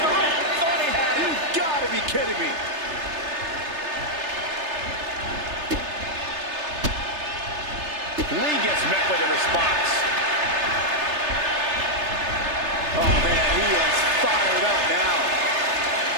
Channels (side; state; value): left; late; 3.3 ms